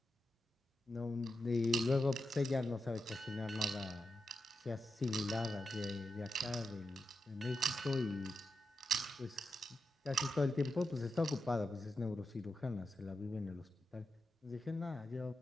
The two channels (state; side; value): normal; both; correlation 0.88